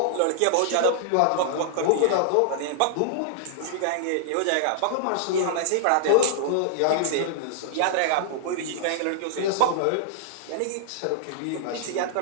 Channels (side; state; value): both; different; correlation -0.01